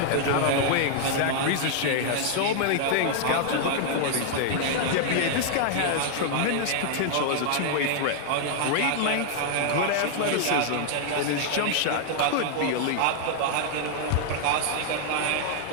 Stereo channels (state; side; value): different; both; correlation 0.00